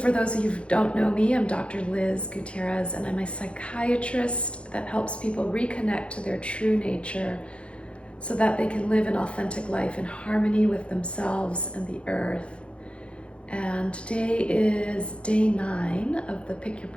those of you who don't know me, I'm Dr. Liz Gutierrez, and I'm a psychiatrist that helps people reconnect to their true nature so that they can live an authentic life in harmony with themselves and the earth. And today is day 9 of the Pick Your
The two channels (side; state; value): right; late; 0.059 ms